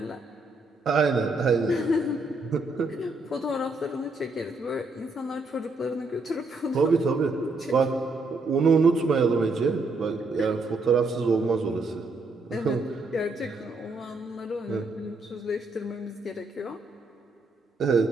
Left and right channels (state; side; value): quieter; left; 3.1 dB